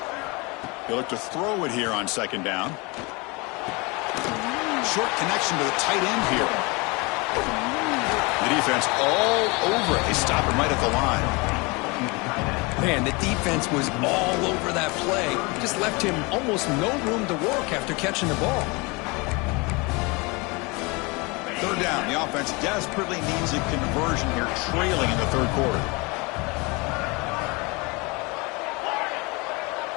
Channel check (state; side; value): quieter; right; 27.2 dB